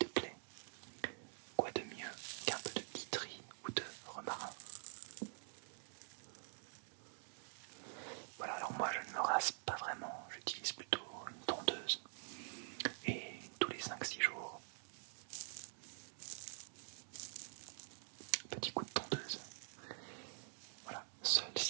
plaies. Quoi de mieux qu'un peu de tea tree ou de romarin? Voilà, alors moi je ne me rase pas vraiment, j'utilise plutôt une tondeuse. Et tous les 5-6 jours, petit coup de tondeuse. Voilà,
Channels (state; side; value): silent; left; digital silence